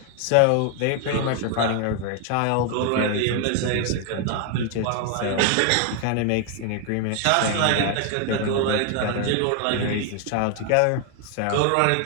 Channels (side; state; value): both; different; correlation 0.01